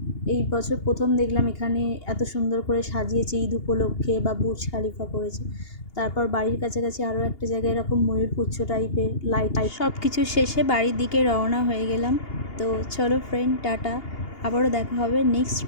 এই বছর প্রথম দেখলাম এখানে এত সুন্দর করে সাজিয়েছে ঈদ উপলক্ষে, বা বুর্জ খালিফা করেছে। তারপর বাড়ির কাছাকাছি আরও একটা জায়গায় এরকম ময়ূরপুচ্ছ টাইপের লাইট। সব কিছু শেষে বাড়ির দিকে রওনা হয়ে গেলাম। তো চলো ফ্রেন্ড, টাটা। আবারও দেখা হবে নেক্সট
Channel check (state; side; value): late; right; 2.8 ms